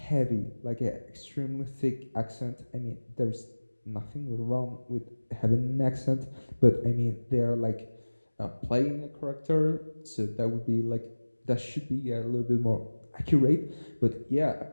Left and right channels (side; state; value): both; inverted; correlation -1.00